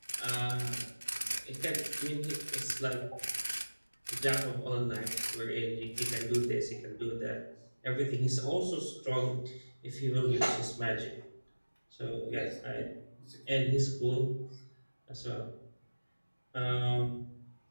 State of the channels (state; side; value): inverted; both; correlation -1.00